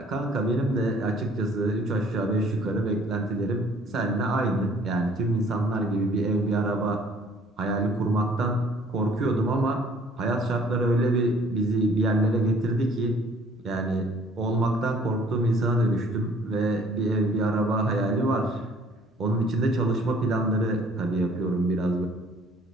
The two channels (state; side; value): normal; both; correlation 0.57